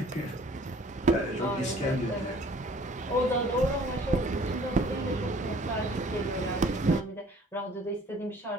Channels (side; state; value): both; normal; correlation 0.54